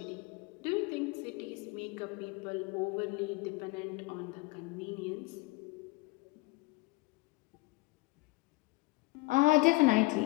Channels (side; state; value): right; quieter; 24.2 dB